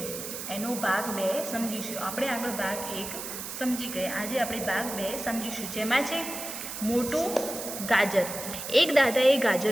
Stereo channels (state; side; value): noise; right; hiss, 7 dB below the sound